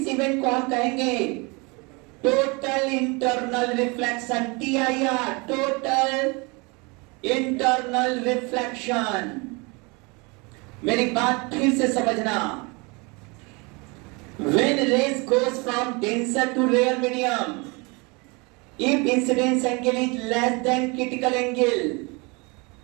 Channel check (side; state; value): left; quieter; 28.5 dB